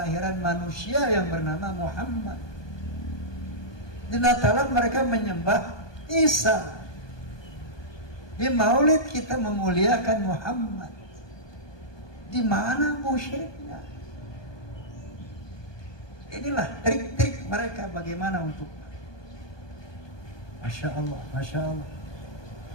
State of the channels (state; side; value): late; right; 1.2 ms